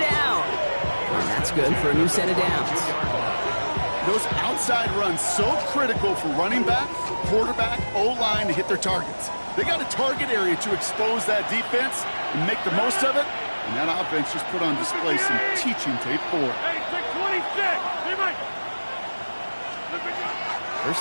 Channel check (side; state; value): both; inverted; correlation -1.00